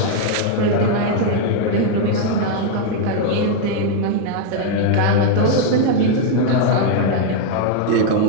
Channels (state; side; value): different; both; correlation 0.00